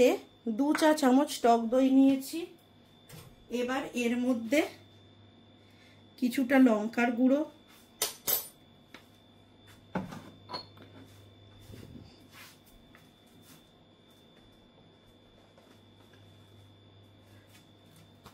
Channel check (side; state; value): both; identical; correlation 1.00